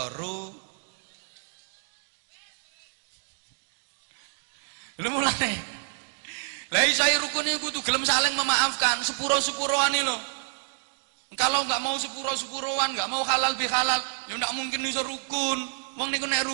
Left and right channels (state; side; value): silent; left; digital silence